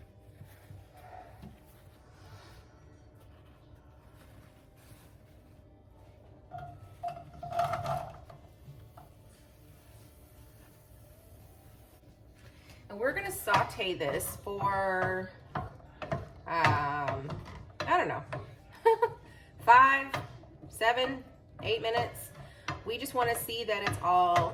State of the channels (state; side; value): identical; both; correlation 1.00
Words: we're gonna saute this for, I don't know, 5, 7, 8 minutes. We just wanna see that it's